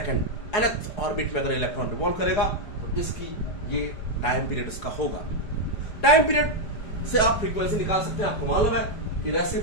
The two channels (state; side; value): late; right; 4.8 ms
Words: nth orbit में अगर इलेक्ट्रॉन रिवॉल्व करेगा तो इसकी ये टाइम पीरियड इसका होगा। टाइम पीरियड से आप फ्रीक्वेंसी निकाल सकते हैं। आपको मालूम है कि